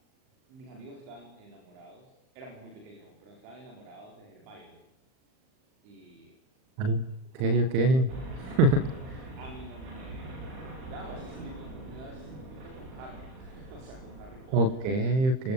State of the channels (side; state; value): left; late; 39 ms